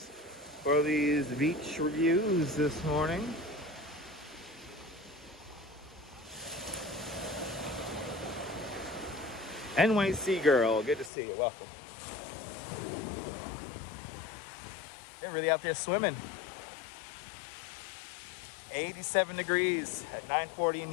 for these beach reviews this morning. NYC girl, good to see you. Welcome. They're really out there swimming. 87 degrees at 9:40 in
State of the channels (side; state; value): right; drops out; at 11.1 s